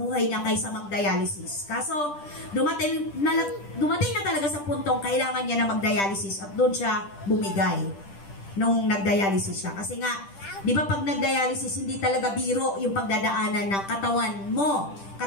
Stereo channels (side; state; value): right; late; 10 ms